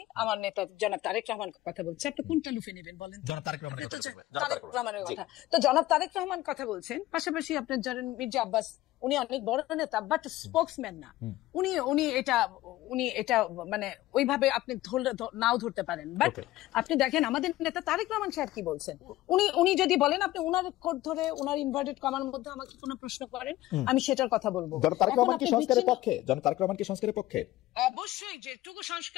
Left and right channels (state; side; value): quieter; right; 16.4 dB